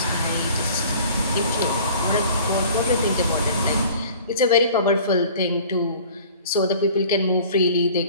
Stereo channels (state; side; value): inverted; both; correlation -0.47